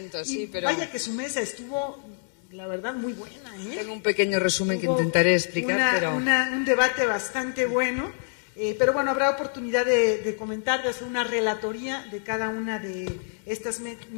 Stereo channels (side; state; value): right; silent; 61 dB below the other